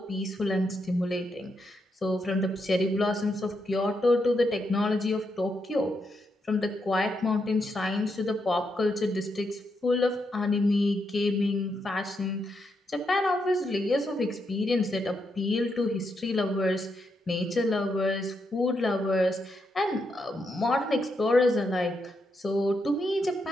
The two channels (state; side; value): normal; both; correlation 0.81